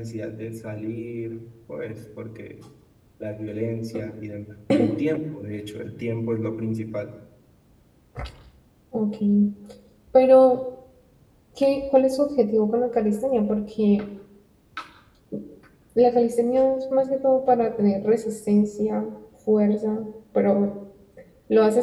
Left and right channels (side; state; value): both; identical; correlation 1.00